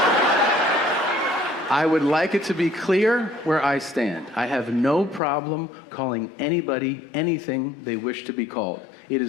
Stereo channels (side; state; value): right; drops out; at 5.2 s